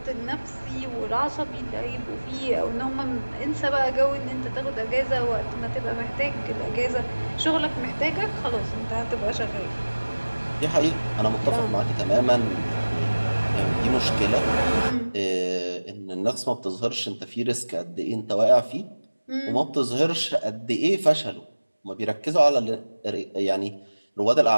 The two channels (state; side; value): inverted; both; correlation -1.00